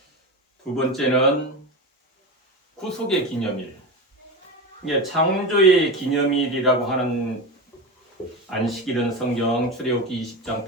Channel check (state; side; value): normal; both; correlation 0.23